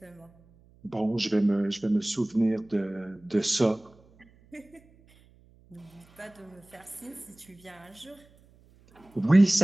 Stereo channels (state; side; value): noise; right; hum, 29 dB below the sound